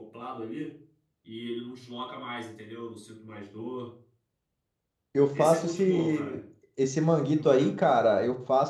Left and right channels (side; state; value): both; identical; correlation 1.00